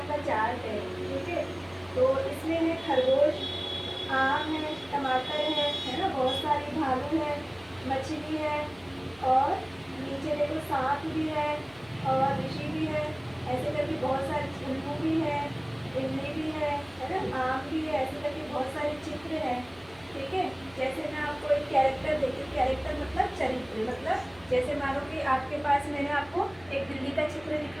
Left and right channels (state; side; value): noise; left; hum, 24 dB below the sound